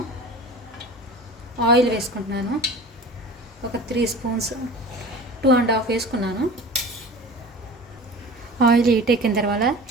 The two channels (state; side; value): normal; both; correlation 0.38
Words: ఆయిల్ వేసుకుంటున్నాను. ఒక 3 స్పూన్స్ 2.5 వేసుకున్నాను. ఆయిల్ హీట్ ఎక్కిన తర్వాత